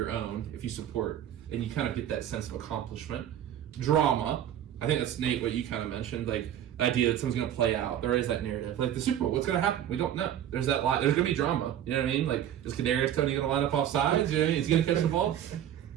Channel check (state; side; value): quieter; left; 10.7 dB